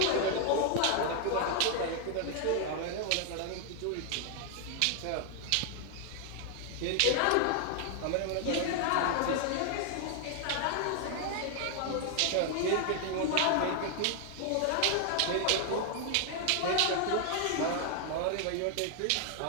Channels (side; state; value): both; different; correlation 0.00